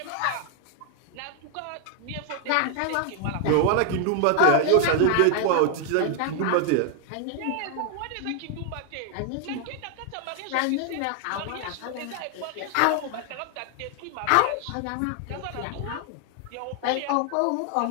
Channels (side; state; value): both; different; correlation 0.00